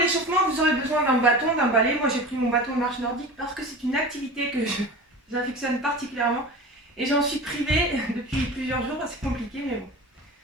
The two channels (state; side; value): normal; both; correlation 0.33